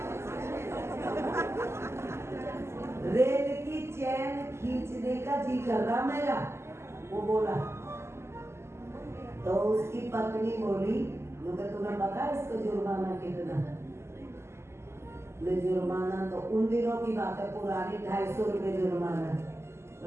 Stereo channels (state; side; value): late; left; 0.13 ms